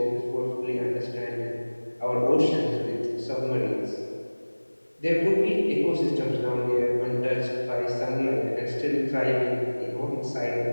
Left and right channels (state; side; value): inverted; both; correlation -1.00